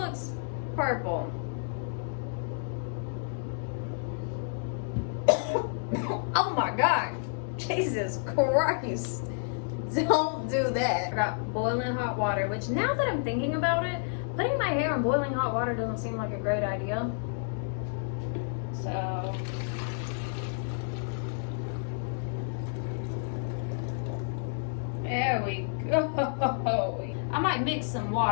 purple. Oh my God. Jesus Christ. Don't do that. I got boiling hot water, which now that I'm thinking about it, putting my hair in boiling hot water doesn't seem like a great idea. So there we go. I might mix some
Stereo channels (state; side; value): silent; right; digital silence